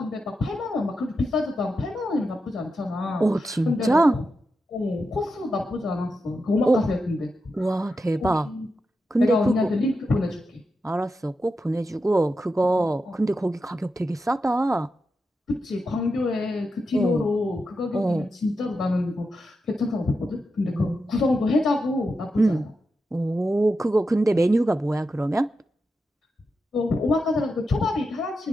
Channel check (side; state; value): both; normal; correlation 0.88